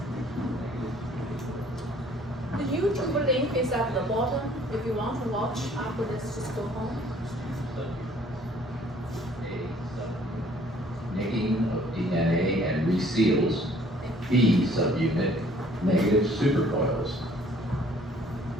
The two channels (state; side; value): normal; both; correlation 0.57